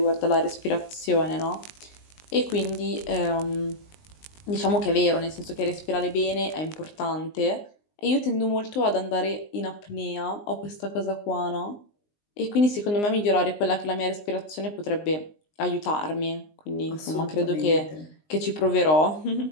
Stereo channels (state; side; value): late; right; 19 ms